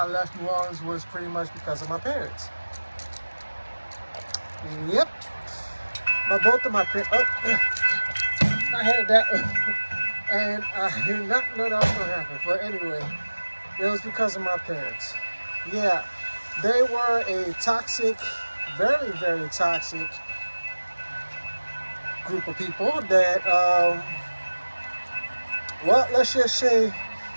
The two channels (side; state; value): both; inverted; correlation -1.00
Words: left New Orleans was pretty much because of my parents. Yep. Both of my parents. Oh, I had that. And I did not know that was going to happen. But anyway, it was because of my parents. Yeah, they were a toxic, very, very toxic group of people that, well, let's just say,